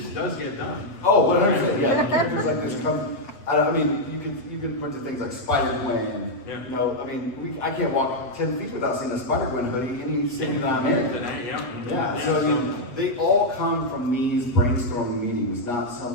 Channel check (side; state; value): right; late; 8.0 ms